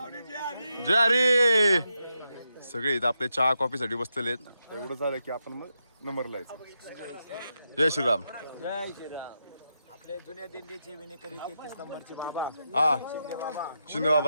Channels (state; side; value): inverted; both; correlation -0.85